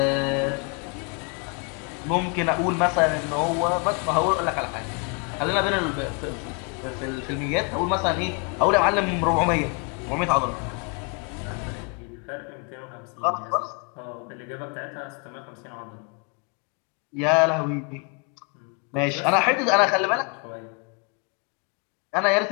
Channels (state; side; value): quieter; right; 34.7 dB